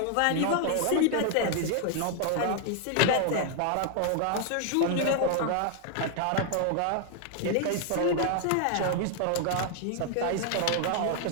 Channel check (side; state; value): both; different; correlation 0.00